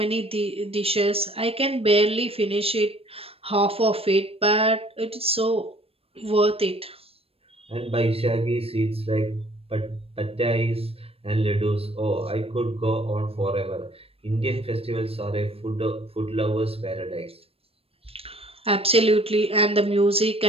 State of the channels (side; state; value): left; late; 0.28 ms